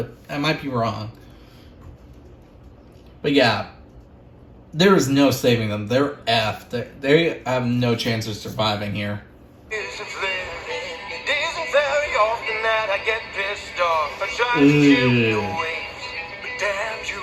I might be wrong. But yeah, there is no saving them. They're effed. They have no chance of surviving here. It isn't very often that I get pissed off. I try to chill your waves, but damn, you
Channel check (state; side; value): identical; both; correlation 1.00